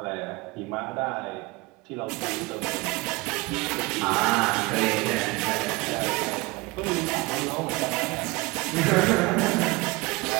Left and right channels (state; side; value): quieter; left; 23.5 dB